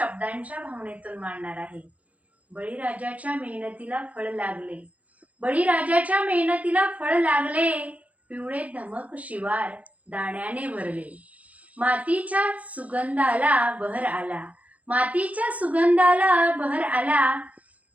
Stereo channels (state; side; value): late; left; 0.069 ms